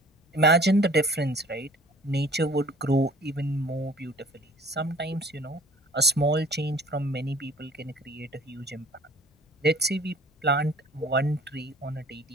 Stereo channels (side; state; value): both; normal; correlation 0.51